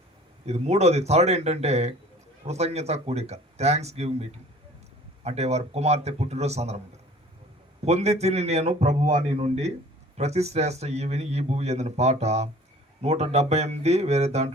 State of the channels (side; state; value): both; normal; correlation 0.48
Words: ఇది మూడోది, థర్డ్ ఏంటంటే కృతజ్ఞత కూడిక, థ్యాంక్స్ గివింగ్ మీటింగ్. అంటే వారి కుమార్తె పుట్టినరోజు సందర్భంగా పొంది తిని నేను ప్రభువాని నుండి ప్రతి శ్రేష్ఠ ఈవిని ఈ భూమి ఎందిన పాట 178, వేరే